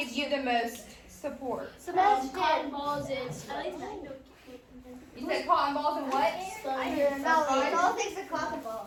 you the most support? Cotton balls and You said cotton balls and what? All things are cotton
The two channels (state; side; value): identical; both; correlation 1.00